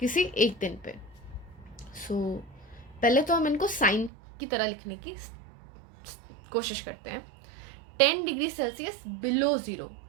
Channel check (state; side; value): drops out; left; at 4.1 s